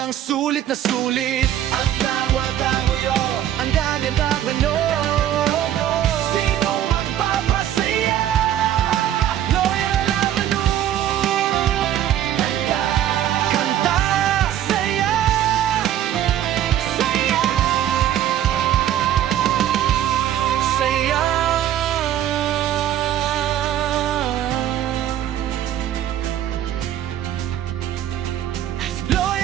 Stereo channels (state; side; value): quieter; left; 11.4 dB